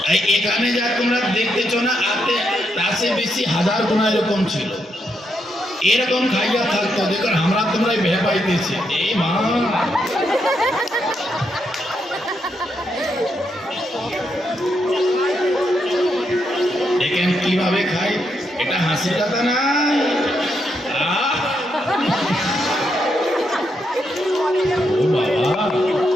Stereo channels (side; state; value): both; normal; correlation 0.80